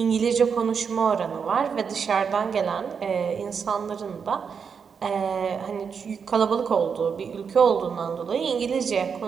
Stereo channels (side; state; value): left; quieter; 6.3 dB